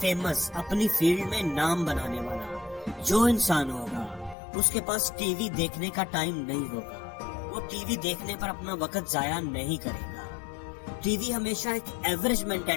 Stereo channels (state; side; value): drops out; right; at 4.4 s